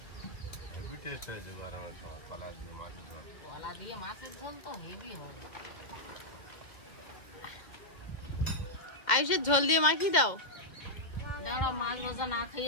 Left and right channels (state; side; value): late; right; 2.1 ms